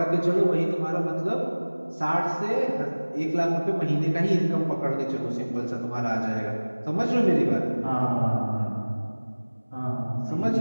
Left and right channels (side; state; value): both; inverted; correlation -1.00